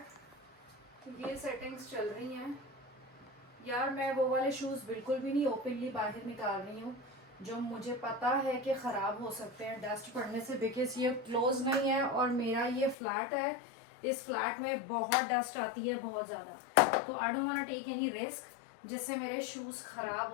ये सेटिंग्स चल रही हैं यार। मैं वो वाले शूज बिल्कुल भी नहीं ओपनली बाहर निकाल रही हूँ जो मुझे पता है कि ख़राब हो सकते हैं डस्ट पड़ने से, बिकॉज ये क्लोज नहीं है और मेरा ये फ्लैट है, इस फ्लैट में बहुत डस्ट आती है, बहुत ज़्यादा। तो I don't want take any risk जिससे मेरे शूज़ ख़राब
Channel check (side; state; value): right; drops out; at 13.0 s